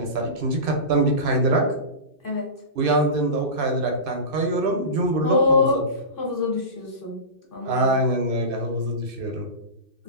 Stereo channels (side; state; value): left; late; 2.6 ms